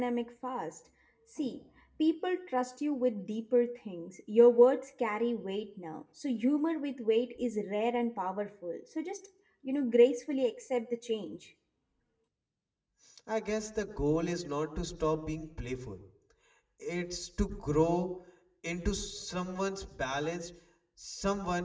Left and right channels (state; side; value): identical; both; correlation 1.00